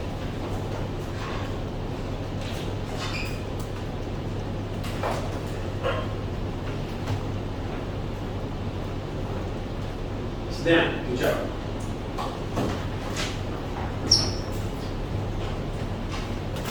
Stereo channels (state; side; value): identical; both; correlation 1.00